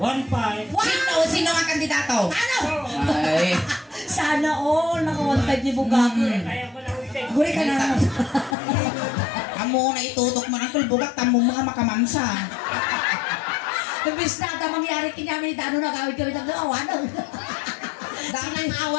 Sino ang kandidato? Ano? Ay. Sana all nakawantay ni Bugak. Guri ka na. Amo na itutok mo ng Bugak, tamo mga makamansa. Nabis na mangyari kinyamin dano na gawin kami ng awan.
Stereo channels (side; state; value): right; drops out; at 8.6 s